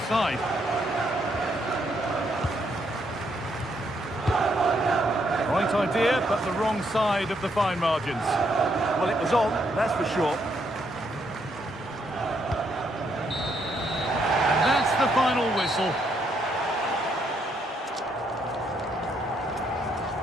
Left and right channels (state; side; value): normal; both; correlation 0.74